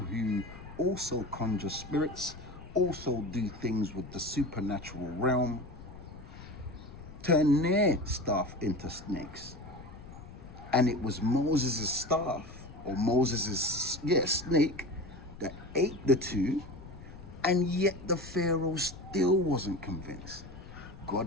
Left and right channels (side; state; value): left; noise; rumble, 16 dB below the sound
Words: who also conjure spirits, also do things with the supernatural realm, turn their staff into snakes. And it was Moses' staff, or Moses' snake, that ate the two, and yet the Pharaoh still wasn't convinced. God